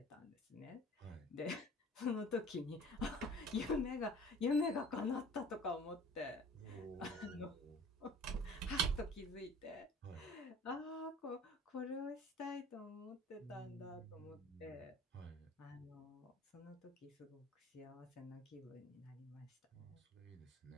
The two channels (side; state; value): both; normal; correlation 0.46